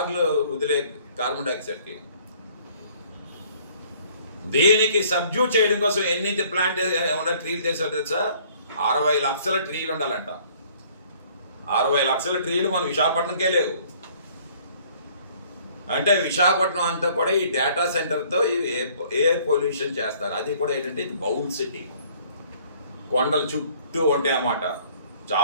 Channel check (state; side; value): inverted; both; correlation -0.56